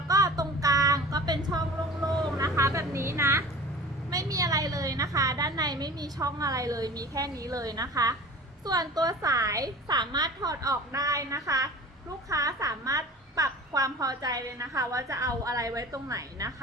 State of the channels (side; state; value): both; normal; correlation 0.39